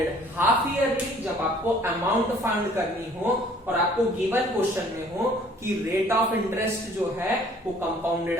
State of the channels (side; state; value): both; normal; correlation 0.56